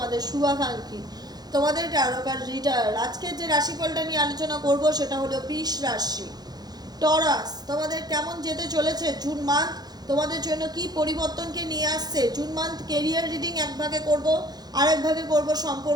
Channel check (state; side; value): late; left; 0.19 ms